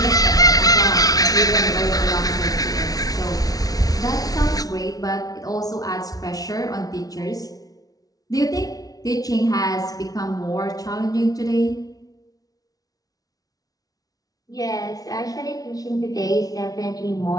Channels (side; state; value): right; late; 0.18 ms